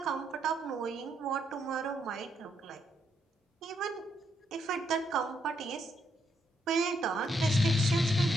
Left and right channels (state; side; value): normal; both; correlation 0.76